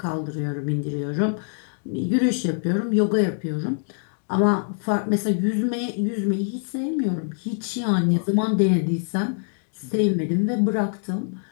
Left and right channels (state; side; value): silent; right; 62 dB below the other